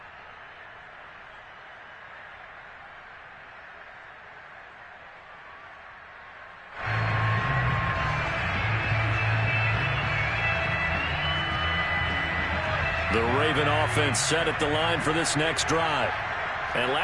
The Raven offense set at the line for this next drive. And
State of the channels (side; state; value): both; identical; correlation 1.00